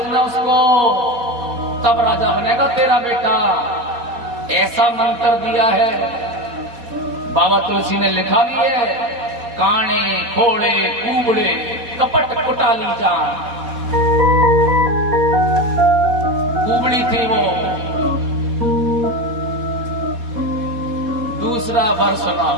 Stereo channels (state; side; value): late; left; 4.2 ms